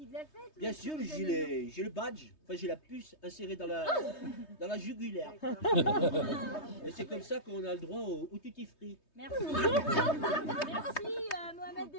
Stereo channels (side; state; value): right; late; 3.2 ms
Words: de la fête? Bien sûr, j'ai le badge, enfin j'ai la puce insérée dans la jugulaire. Et c'est comme ça qu'on a le droit au tutti free. Merci. Merci Mohamed